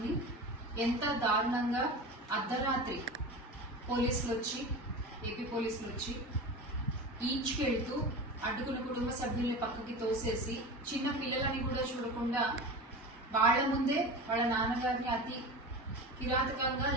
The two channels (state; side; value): normal; both; correlation 0.30